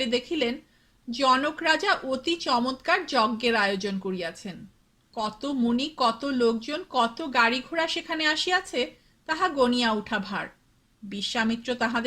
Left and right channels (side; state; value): both; identical; correlation 1.00